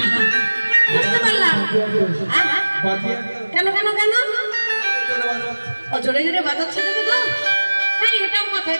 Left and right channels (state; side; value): inverted; both; correlation -1.00